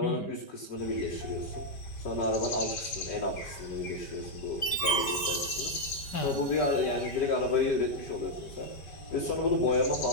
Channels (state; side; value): late; right; 5.1 ms